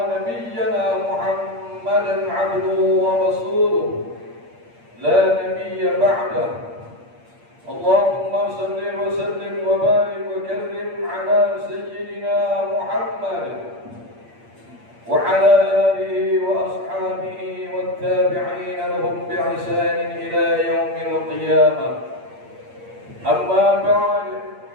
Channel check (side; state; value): left; late; 8.6 ms